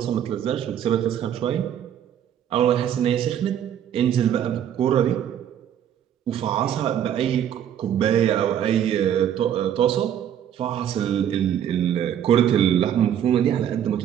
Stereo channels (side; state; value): left; quieter; 9.9 dB